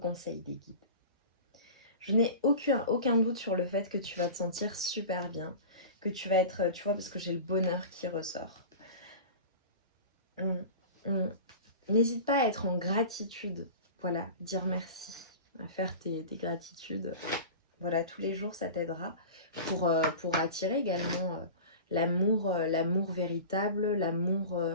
des guides. Je n'ai aucun doute sur le fait que tu vas te sentir super bien, que tu vas être, tu vois, parce que j'ai le bonheur qui ressort. N'hésite pas à être en gratitude, voilà, dire merci, à faire tes gratitudes. Voilà, tous les jours, ça t'aidera pour attirer également l'amour véritable, l'amour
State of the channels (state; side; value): inverted; both; correlation -0.34